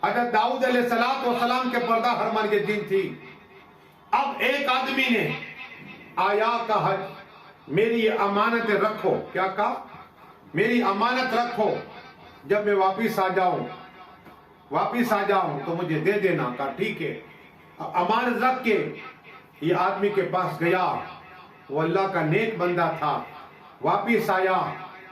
حضرت داؤد علیہ السلام کے پردہ حرمان یہ دن تھی۔ اب ایک آدمی نے آیا کہا میری امانت رکھو، کیا کہا؟ میری امانت رکھو، جب میں واپس آ جاؤں تو مجھے دے دینا۔ کہا ٹھیک ہے۔ امانت رکھ کے یہ آدمی کے پاس گیا، وہ اللہ کا نیک بندہ تھا، واپس آیا۔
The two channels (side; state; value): both; identical; correlation 1.00